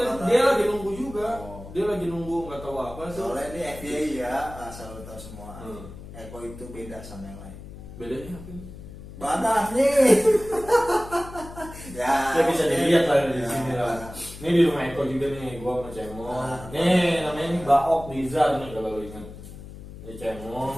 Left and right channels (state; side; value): noise; left; hum, 14 dB below the sound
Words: dia lagi nunggu juga. Dia lagi nunggu nggak tahu apa tuh. Soalnya ini FBI ya, asal lo tahu semua. Hmm. Eko itu beda sama yang lain. Bedanya apa? Badannya. Ya bisa dilihat lah di Ya, sini lah. badan. Ini di rumah Eko juga nih, gua sama Cemong. Ah. Nih namanya ini Baok Nizar nih kalau lu ingat. Ini Cemong